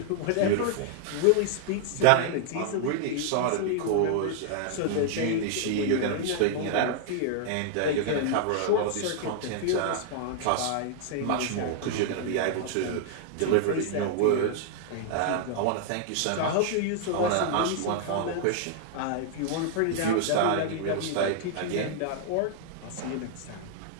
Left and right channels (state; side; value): different; both; correlation -0.01